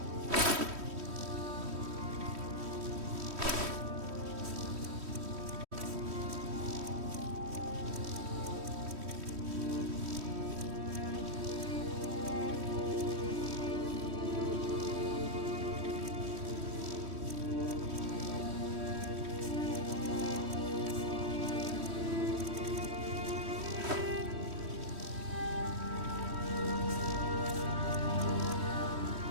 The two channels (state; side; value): late; left; 3.1 ms